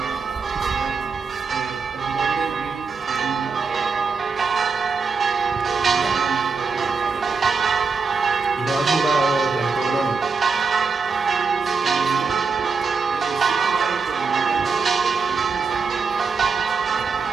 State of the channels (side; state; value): left; quieter; 4.9 dB